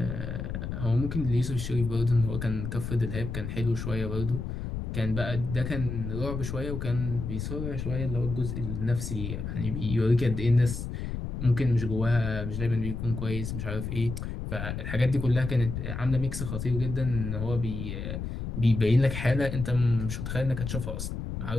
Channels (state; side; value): noise; left; rumble, 5 dB below the sound